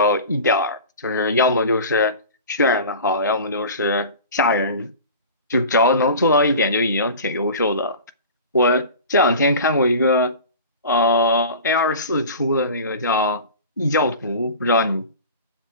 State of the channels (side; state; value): both; inverted; correlation -0.37